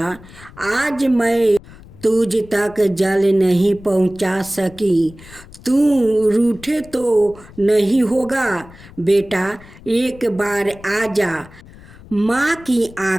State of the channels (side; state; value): left; noise; rumble, 21 dB below the sound